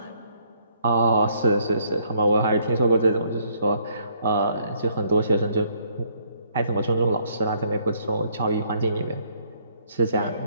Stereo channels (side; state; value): both; inverted; correlation -0.67